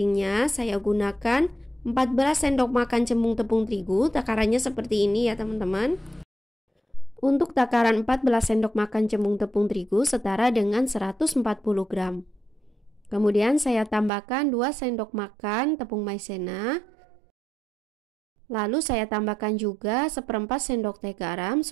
Saya gunakan 14 sendok makan cembung tepung terigu, takarannya seperti ini ya teman-teman. Untuk takaran 14 sendok makan cembung tepung terigu setara dengan 140 gram. Kemudian saya tambahkan 2 sendok makan tepung maizena. Lalu saya tambahkan juga 1/4 sendok teh garam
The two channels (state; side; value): drops out; left; at 14.1 s